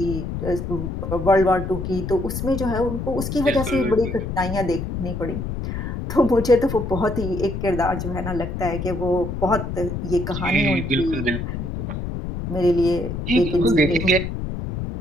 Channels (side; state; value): left; noise; rumble, 5 dB below the sound